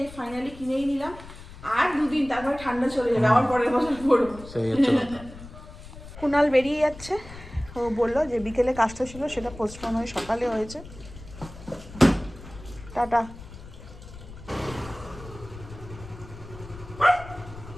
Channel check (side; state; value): left; noise; rumble, 16 dB below the sound